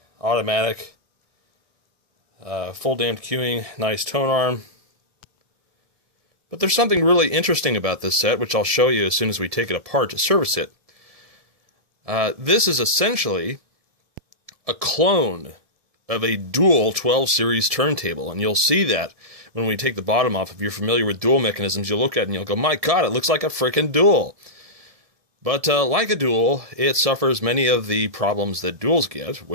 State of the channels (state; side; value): late; left; 1.7 ms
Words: automatic, full damped queuing, nice tone arm. But there's something really interesting about this set, which I'll show you as soon as we take it apart to service it. This is essentially a clone of a dual 12 series turntable, and you'll see that when we take the bottom off. If you're familiar with dual mechanisms, you'll look at it and you'll go, my god, it looks like a frickin' dual. But like a dual, it suffers many of the problems that duals get,